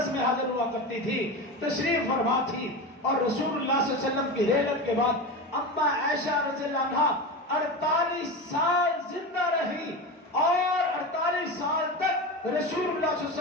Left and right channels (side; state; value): both; normal; correlation 0.24